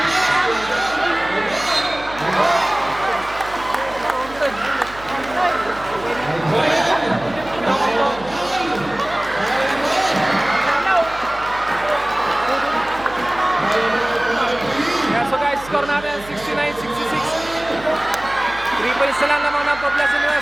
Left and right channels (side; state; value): right; noise; hum, 18 dB below the sound